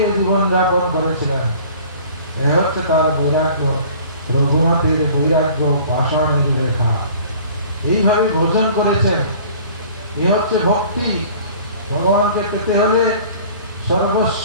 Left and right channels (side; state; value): both; inverted; correlation -0.48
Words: জীবনযাপন করেছিলেন। এ হচ্ছে তার বৈরাগ্য, রঘুনাথের বৈরাগ্য, পাষাণের রেখা। এইভাবে ভোজন করেছেন। এ হচ্ছে ভক্তি। ভগবানকে পেতে হলে সর্বস্ব